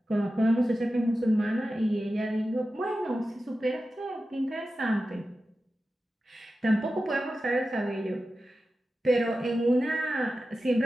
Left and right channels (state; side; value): normal; both; correlation 0.93